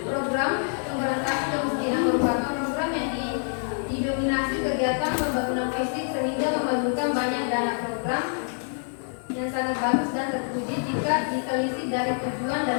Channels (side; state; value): right; silent; 61 dB below the other